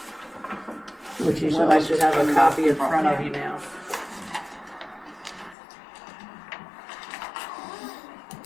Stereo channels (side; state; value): right; drops out; at 5.6 s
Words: Which you should have a copy in front of you now.